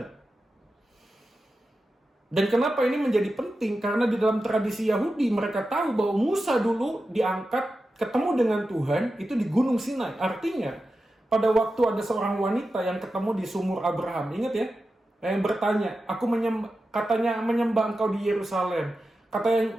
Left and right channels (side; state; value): both; normal; correlation 0.92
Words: Dan kenapa ini menjadi penting? Karena di dalam tradisi Yahudi mereka tahu bahwa Musa dulu diangkat ketemu dengan Tuhan itu di Gunung Sinai. Artinya pada waktu ada seorang wanita yang ketemu di sumur Abraham. Ingat ya? Yang bertanya, katanya menyembah engkau di Yerusalem.